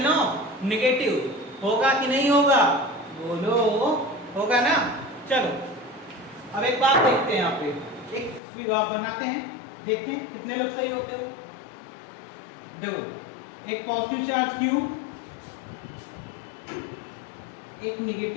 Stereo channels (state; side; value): drops out; right; at 8.4 s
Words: of negative. होगा कि नहीं होगा, बोलो, होगा ना। चलो अब एक बात देखते हैं, यहाँ पे एक विवाह बनाते हैं, देखते हैं कितने लोग सही होते हो। देखो, एक पॉजिटिव चार्ज Q, एक